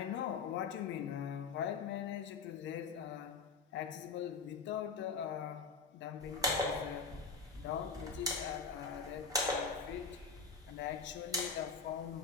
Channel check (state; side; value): quieter; right; 5.0 dB